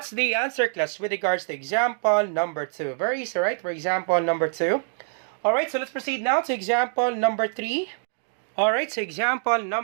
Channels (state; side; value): silent; left; digital silence